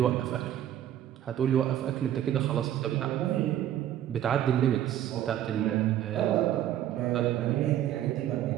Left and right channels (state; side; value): quieter; left; 11.5 dB